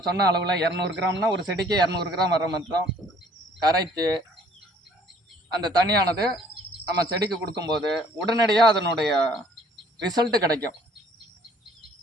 சொன்ன அளவில் 200 கிராம்னா ஒரு செடிக்கு 200 கிராம் வர மாத்திரம் கரைச்சி அந்த தண்ணியானது நம்ம செடிக்கு கொடுக்கும்போது உடனடியாக அதனுடைய ரிசல்ட்டு கிடைக்கும்.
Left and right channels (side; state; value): both; normal; correlation 0.57